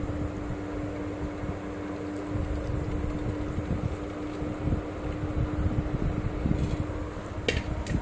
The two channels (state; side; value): identical; both; correlation 1.00